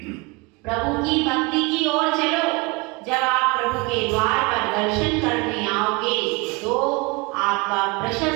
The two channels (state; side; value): quieter; left; 26.7 dB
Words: प्रभु की भक्ति की ओर चलो। जब आप प्रभु के द्वार पर दर्शन करने आओगे तो आपका